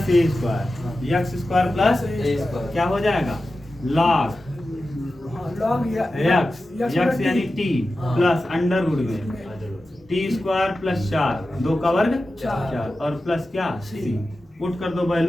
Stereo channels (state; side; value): normal; both; correlation 0.93